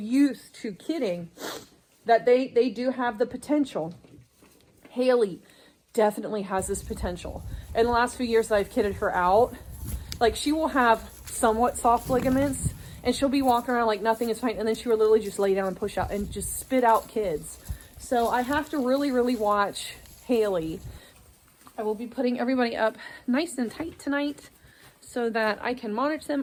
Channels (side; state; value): both; identical; correlation 1.00